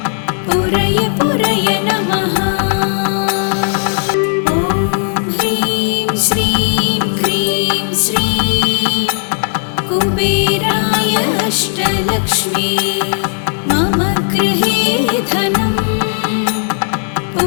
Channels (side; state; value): right; silent; digital silence